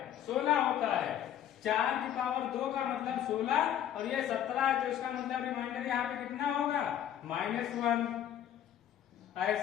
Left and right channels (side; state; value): right; quieter; 10.5 dB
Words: 16 होता है। 4 की पावर 2 का मतलब 16 और ये 17, तो इसका मतलब रिमाइंडर यहाँ पे कितना होगा, -1।